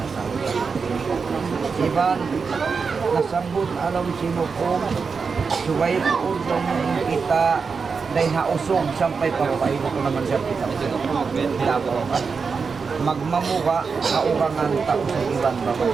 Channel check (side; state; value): left; quieter; 5.2 dB